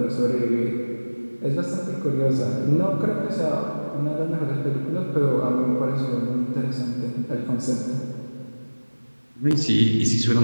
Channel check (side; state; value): both; inverted; correlation -1.00